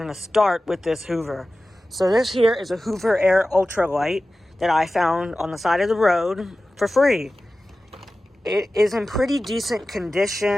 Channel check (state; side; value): normal; both; correlation 0.95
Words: to start with this Hoover. So this here is a Hoover Air Ultralight that I found on the side of the road for free. It is in pretty decent